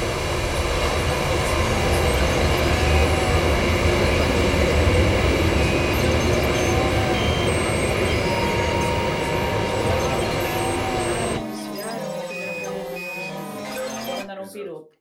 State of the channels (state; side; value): identical; both; correlation 1.00